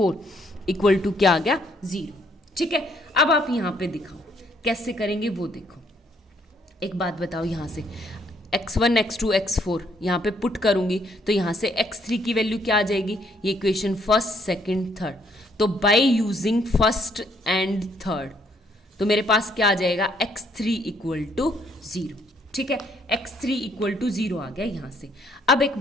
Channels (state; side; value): normal; both; correlation 0.68